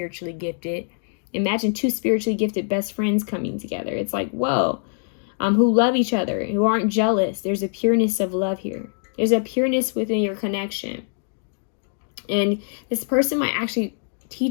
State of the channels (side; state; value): right; silent; digital silence